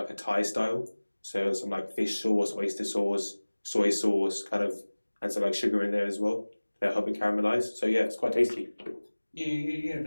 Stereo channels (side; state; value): both; inverted; correlation -1.00